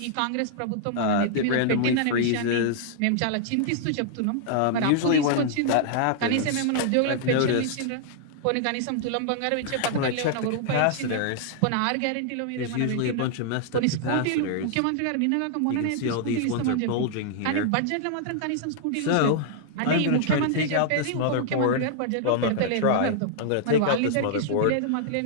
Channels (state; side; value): different; both; correlation -0.01